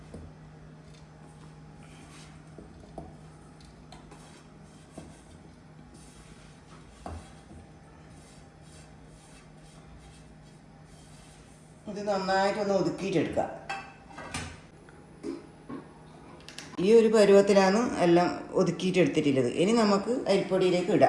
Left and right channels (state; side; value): identical; both; correlation 1.00